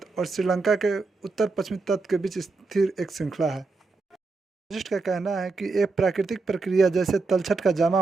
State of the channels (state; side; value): quieter; left; 3.9 dB